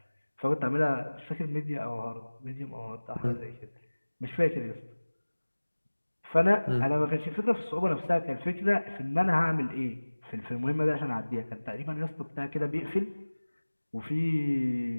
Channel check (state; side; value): inverted; both; correlation -1.00